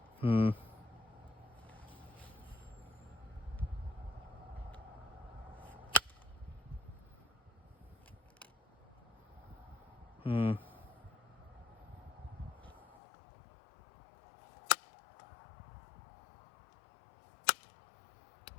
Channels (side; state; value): right; drops out; at 13.0 s